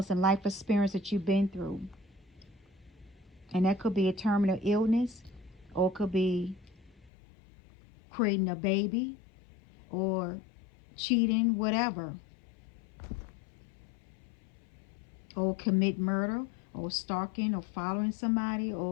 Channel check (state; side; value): drops out; right; at 7.1 s